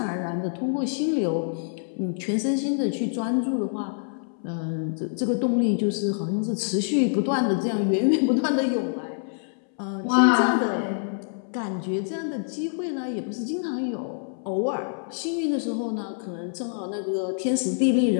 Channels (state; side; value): silent; right; 60 dB below the other